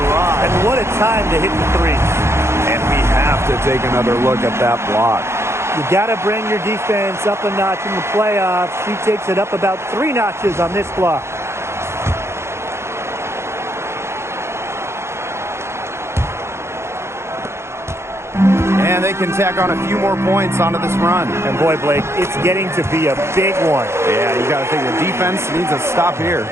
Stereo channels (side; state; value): left; late; 0.13 ms